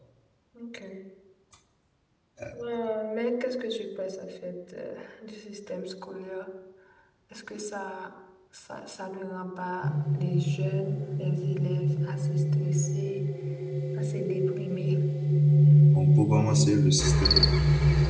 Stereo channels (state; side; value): identical; both; correlation 1.00